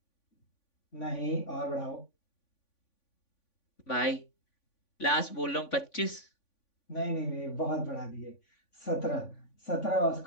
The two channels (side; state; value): right; late; 3.5 ms